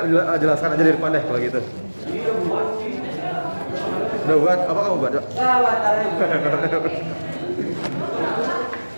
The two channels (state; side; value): inverted; both; correlation -1.00